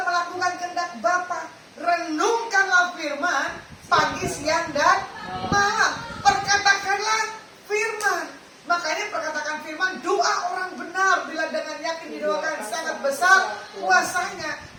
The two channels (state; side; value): identical; both; correlation 1.00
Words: melakukan kehendak Bapa. Renungkanlah firman pagi, siang, dan malam. Perkatakanlah firman. Makanya perkatakan firman, doa orang benar bila dengan yakin didoakan sangat besar kuasanya.